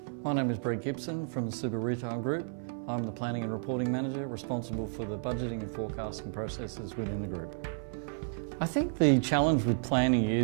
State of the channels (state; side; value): silent; left; 56 dB below the other